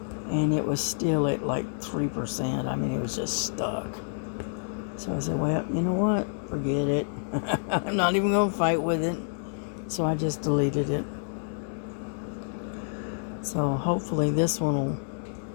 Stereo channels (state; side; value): silent; right; digital silence